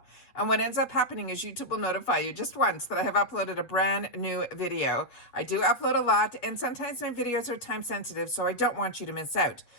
And what ends up happening is YouTube will notify you just once that I have uploaded a brand new video. I do upload a lot, and sometimes my videos are time sensitive, so I don't want you to miss out.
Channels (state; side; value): late; right; 8.4 ms